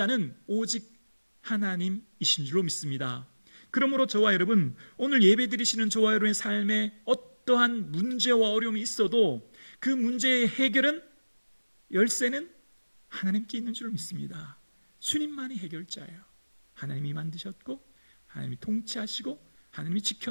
오직 하나님이신 줄로 믿습니다. 그러므로 저와 여러분, 오늘 예배 드리시는 저와 여러분의 삶에 어떠한 문제와 어려움이 있어도 그 문제의 해결은, 열쇠는 하나님께 있는 줄로 믿습니다. 주님만이 해결자예요. 하나님이 만드셨고 하나님이 통치하시고 하나님이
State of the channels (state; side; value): inverted; both; correlation -1.00